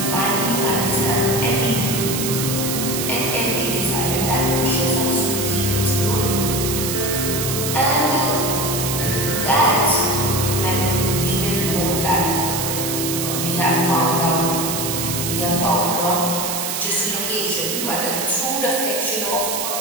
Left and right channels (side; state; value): right; noise; hiss, 2 dB below the sound